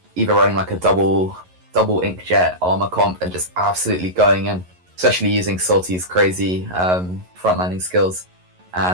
either running like a double inkjet armor comp and just absolutely going in, especially using Salty's crazy frontlining skills,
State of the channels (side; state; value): left; late; 11 ms